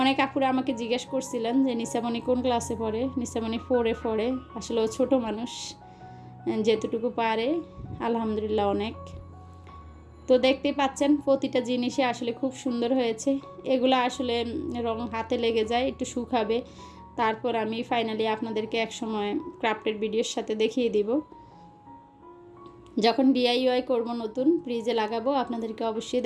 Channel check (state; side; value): identical; both; correlation 1.00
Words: অনেক আপুরা আমাকে জিজ্ঞেস করছিলেন যে নিসামণি কোন ক্লাসে পড়ে। নিসামণি 4-এ পড়ে। আসলে ও ছোটো মানুষ, যেতটুকু পারে আলহামদুলিল্লাহ অনেক। তো দেখতে পাচ্ছেন প্রতিটা জিনিসই আসলে খুব সুন্দর হয়েছে। এগুলো আসলে রং হাতে লেগে যায়, একটু শুকাবে, তারপর আমি ফাইনালি আপনাদেরকে এক সময় ক্রাফটের ভিডিওর সাথে দেখিয়ে দিব। যখন ডিআইওয়াই করব, নতুন ফ্রিজে লাগাবো, আপনাদেরকে অবশ্যই